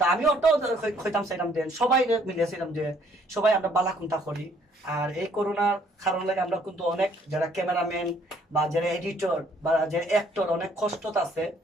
আমি ওটাও হইতাম চাইলাম যে সবাই মিলিয়েছিলাম যে সবাই আমরা বালা কুন্তা করি। আর এই করোনার কারণ লাগে আমরা কিন্তু অনেক যারা ক্যামেরাম্যান বা যারা এডিটর বা যারা অ্যাক্টর অনেক কষ্ট আছে,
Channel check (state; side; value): normal; both; correlation 0.64